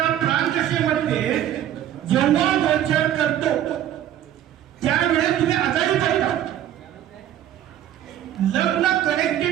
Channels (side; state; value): left; quieter; 11.4 dB